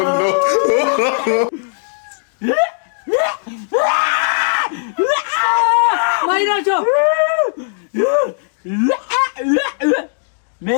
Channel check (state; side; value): silent; right; 68 dB below the other